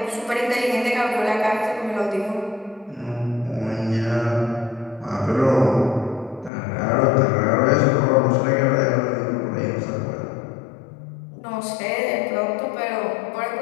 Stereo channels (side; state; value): right; drops out; at 6.5 s